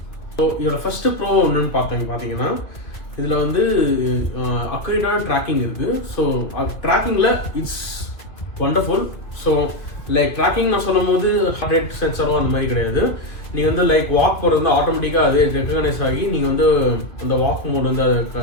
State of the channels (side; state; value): right; late; 2.3 ms